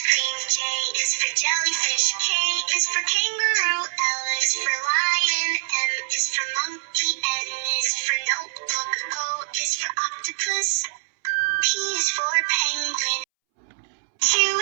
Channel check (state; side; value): silent; left; 63 dB below the other